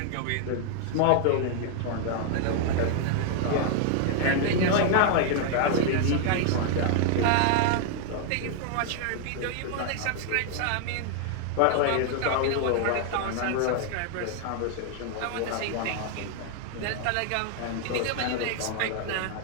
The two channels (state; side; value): different; both; correlation 0.00